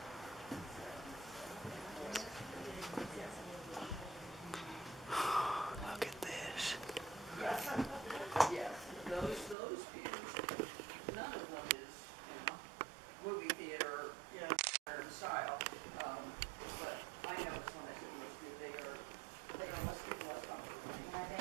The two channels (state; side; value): drops out; left; at 9.6 s